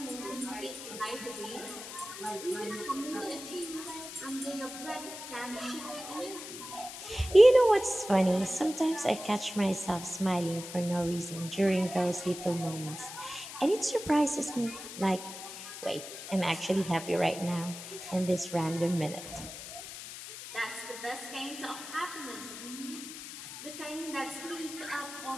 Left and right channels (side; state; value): left; noise; hiss, 11 dB below the sound